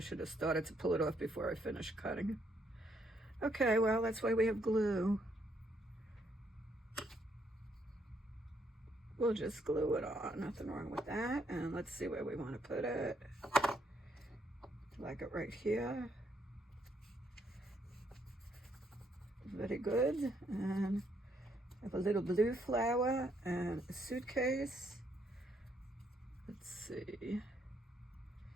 have started to pull it off before I finished cutting. Okay, well, that's why we have glue. We'll just glue it on, nothing wrong with that. And let's see where we want to put it. Like it right here. Very good. And I have a little blue flower and a suitcase. Let's see.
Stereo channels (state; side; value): normal; both; correlation 0.73